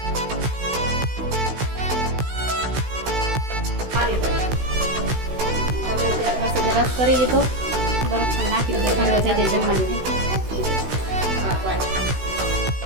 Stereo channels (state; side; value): late; left; 16 ms